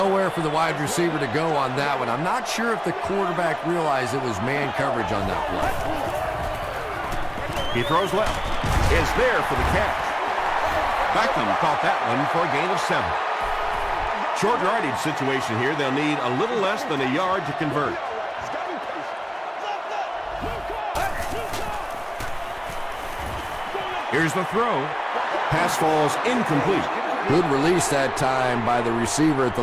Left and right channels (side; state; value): both; identical; correlation 1.00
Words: for the wide receiver to go on that one. I'm not sure if the quarterback realized it was man coverage on that play. He throws left. Is there for the catch. Beckham caught that one for a gain of 7. Short yardage situation here. They'll need a little less than a yard to convert. Here's the throw. Pass falls incomplete. Good release that time by the receiver at the